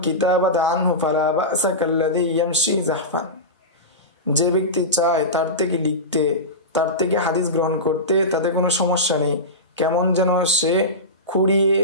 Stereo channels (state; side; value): normal; both; correlation -0.18